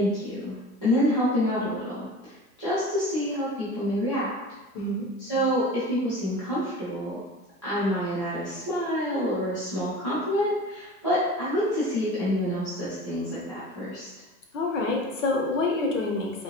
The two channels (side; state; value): both; normal; correlation 0.37